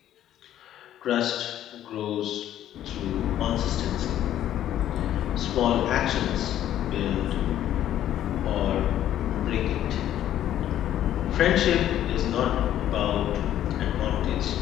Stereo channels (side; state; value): right; quieter; 11.8 dB